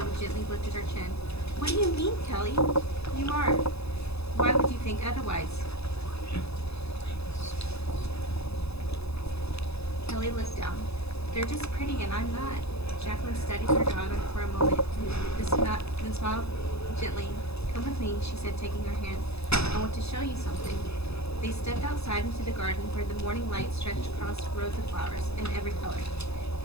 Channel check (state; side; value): late; right; 0.79 ms